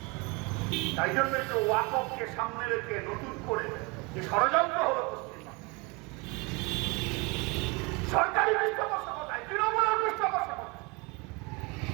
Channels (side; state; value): left; quieter; 28.0 dB